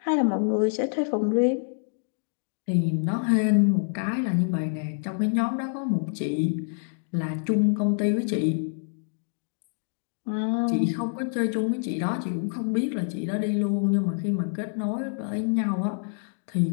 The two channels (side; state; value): right; silent; digital silence